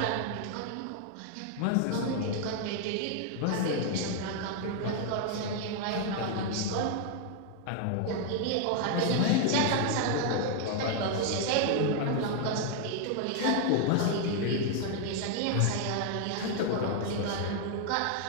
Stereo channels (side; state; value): both; different; correlation 0.00